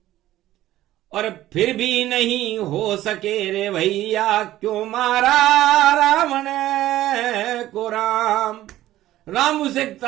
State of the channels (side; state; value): left; quieter; 14.5 dB